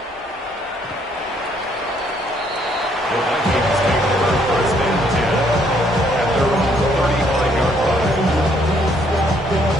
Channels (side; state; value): both; normal; correlation 0.67